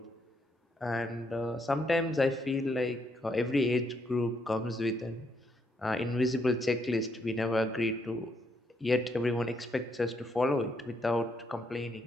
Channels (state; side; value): normal; both; correlation 0.75